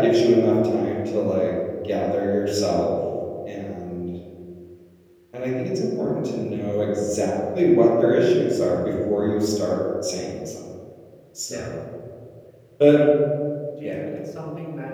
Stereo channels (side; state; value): both; identical; correlation 1.00